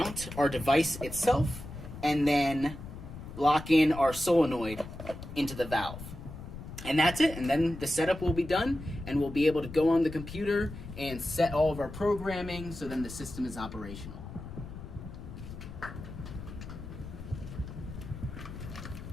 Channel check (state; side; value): noise; left; rumble, 11 dB below the sound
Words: our device itself and then lock in our solenoid into the valve. And that's it. And then the setup will be done and we'll be able to go on the computer and set all of our programming so then the system is operational.